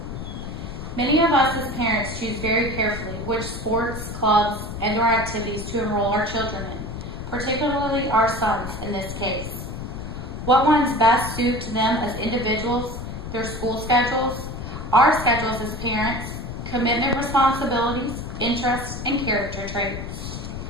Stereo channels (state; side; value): noise; left; rumble, 8 dB below the sound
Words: Many of us as parents choose very carefully which sports, clubs, and/or activities to enroll our children in, particularly our sons in this case. What ones best suit to them as individuals, their school schedules, our schedules as parents, commitment responsibilities, interests, and character traits.